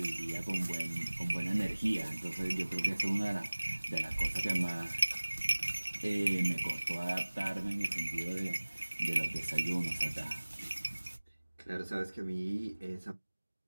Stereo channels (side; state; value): both; inverted; correlation -1.00